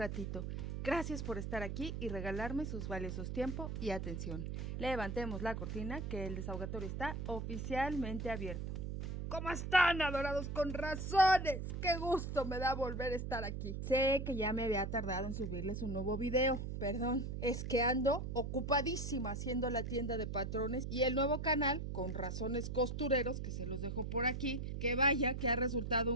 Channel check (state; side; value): noise; right; hum, 4 dB below the sound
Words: Gracias por estar aquí y regalarme sus valiosos tiempo y atención. Levantemos la cortina que el desahogatorio está oficialmente abierto. ¿Cómo están, adorados con razones? ¡Qué gusto me da volver a estar aquí! Sé que ya me había tardado en subirles un nuevo video. Perdón, es que ando ocupadísima haciendo la tienda de patrones y el nuevo canal con razones costureros, que se los dejo por aquí, que vaya que ha resultado